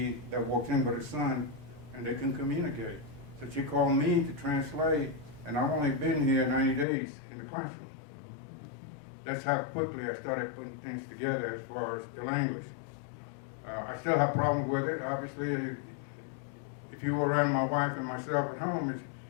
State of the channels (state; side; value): drops out; right; at 6.9 s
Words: that walks in with her son, and they can communicate. So she called me to translate, and I've only been here 90 days in the classroom. That's how quickly I started putting things together as far as the language. I still have problems with it. Obviously, if you were around my wife and myself at home,